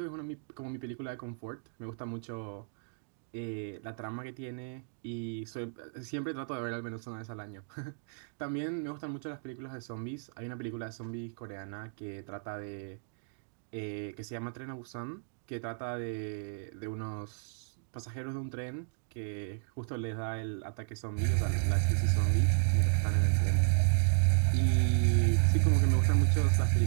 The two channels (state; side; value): silent; left; digital silence